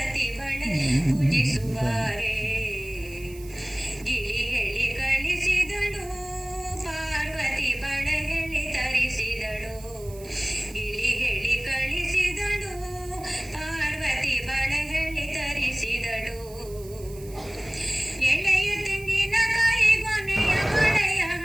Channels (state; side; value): noise; right; hiss, 20 dB below the sound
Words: ಬಳೆ ಪೂಜಿಸುವಾರೆ. ಗಿಳಿ ಹೇಳಿ ಕಳಿಸಿದಳು ಪಾರ್ವತಿ ಬಳೆ ಹೇಳಿ ತರಿಸಿದಳು. ಗಿಳಿ ಹೇಳಿ ಕಳಿಸಿದಳು ಪಾರ್ವತಿ ಬಳೆ ಹೇಳಿ ತರಿಸಿದಳು. ಎಳೆಯ ತೆಂಗಿನಕಾಯಿ ಗೊನೆಯ ಬಳೆಯ